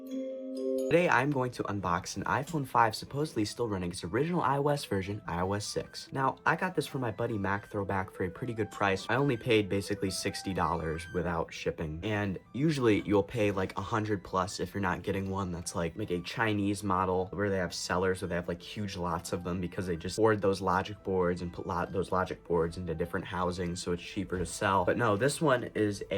Today, I'm going to unbox an iPhone 5 supposedly still running its original iOS version, iOS 6. Now, I got this from my buddy Mac Throwback for a pretty good price. I only paid basically $60 without shipping. And usually, you'll pay like 100 plus if you're not getting one that's like a Chinese model where they have sellers where they have like huge lots of them because they just board those logic boards and put those logic boards into different housings so it's cheaper to sell. But no, this one is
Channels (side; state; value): both; identical; correlation 1.00